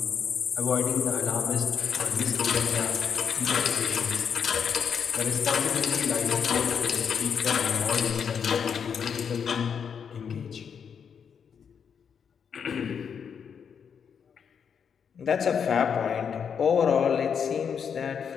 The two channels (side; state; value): right; quieter; 7.1 dB